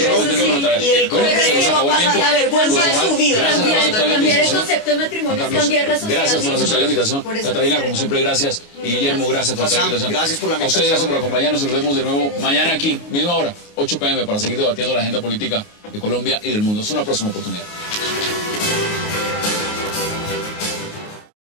y el Congreso va a pasar la vergüenza de su vida. Cambiar el concepto de matrimonio es cambiar la sociedad. Gracias por aceptar la invitación. Catalina, como siempre, gracias. Y Guillermo, gracias por aceptar la invitación. Gracias por la invitación. A ustedes, gracias por acompañarnos. Nos vemos de nuevo mañana aquí, misma hora, 8 p.m., para seguir debatiendo la agenda política de Colombia y del mundo. Es una próxima oportunidad.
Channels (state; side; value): late; right; 29 ms